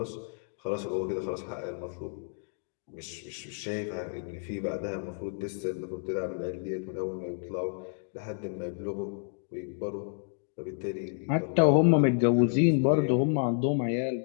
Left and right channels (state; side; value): silent; right; digital silence